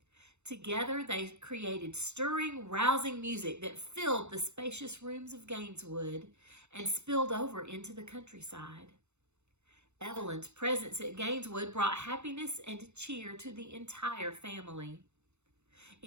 Together they created stirring, rousing music that filled the spacious rooms of Gaineswood and spilled over into the countryside. Evelyn's presence at Gaineswood brought happiness and cheer to the entire family.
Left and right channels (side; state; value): left; late; 0.81 ms